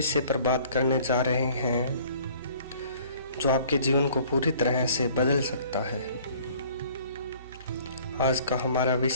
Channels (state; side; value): inverted; both; correlation -0.54